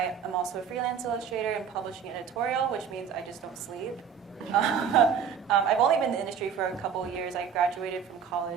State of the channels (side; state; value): left; quieter; 7.3 dB